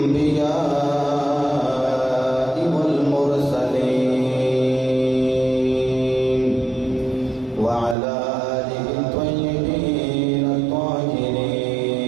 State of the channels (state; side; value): drops out; left; at 8.0 s